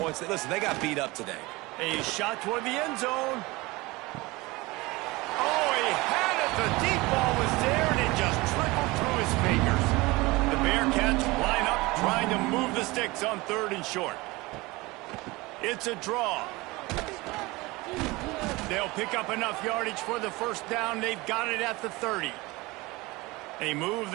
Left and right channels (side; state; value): left; quieter; 22.3 dB